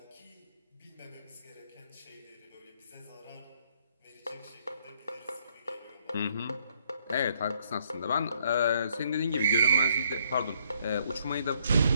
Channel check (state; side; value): inverted; both; correlation -0.69